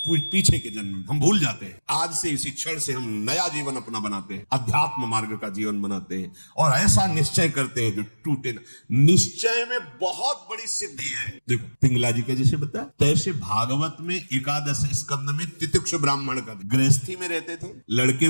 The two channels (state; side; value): inverted; both; correlation -1.00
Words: पीछे के जन्म हम भूल जाते हैं। आज से इसी क्षण से हम नया जीवन अपना बनाते हैं, अध्यात्म मार्ग का जीवन बनाते हैं और ऐसा निश्चय करते हैं जो टूटे न। निश्चय में बहुत बड़ी सिद्धि है। देखो पिंगला जी का जैसे बताया, तैसे भागवत में एकादश स्कंद में तितिक्ष ब्राह्मण का, गृहस्थी में रहते थे, लड़के